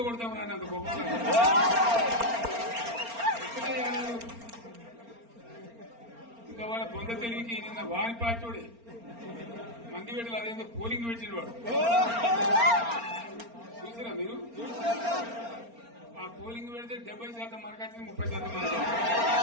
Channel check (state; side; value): late; left; 4.3 ms